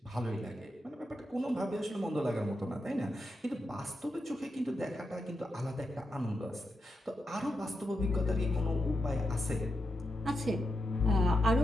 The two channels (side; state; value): both; normal; correlation 0.87